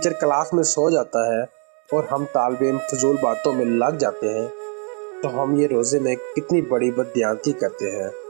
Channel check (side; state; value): left; quieter; 39.9 dB